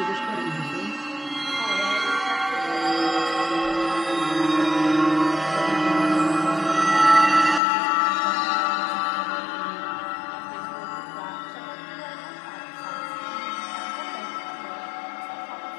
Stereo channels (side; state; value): right; drops out; at 7.6 s